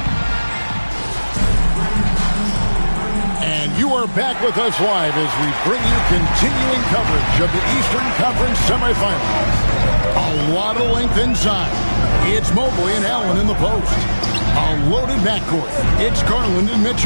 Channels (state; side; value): inverted; both; correlation -1.00